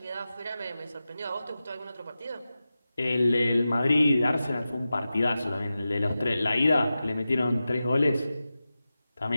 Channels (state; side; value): inverted; both; correlation -0.93